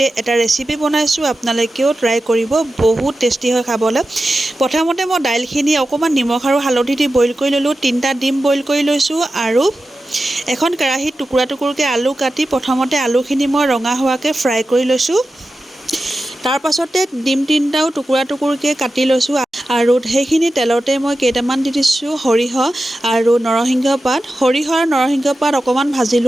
এটা ৰেচিপি বনাইছো। আপোনালোকেও ট্ৰাই কৰিব, বহুত টেষ্টি হয় খাবলৈ। প্ৰথমতে মই দাইলখিনি অকমান নিমখ আৰু হালধি দি বইল কৰি ললো। 3টা ডিম বইল কৰি লৈছো আৰু এখন কেৰাহীত টুকুৰা টুকুৰকৈ আলু কাটি প্ৰথমতে আলুখিনি মই ৰঙা হোৱাকৈ ফ্ৰাই কৰি লৈছোঁ। তাৰ পাছতে ডিম 3টাও টুকুৰা টুকুৰকৈ কাটি লৈছোঁ আৰু সেইখিনি তেলতে মই কেইটামান দি দিছোঁ সৰিয়হ আৰু নৰসিংহ পাত। সৰিয়হ আৰু নৰসিংহ পাত অকণমান ভাজি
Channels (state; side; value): normal; both; correlation 0.93